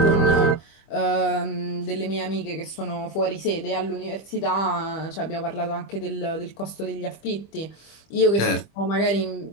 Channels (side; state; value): right; late; 25 ms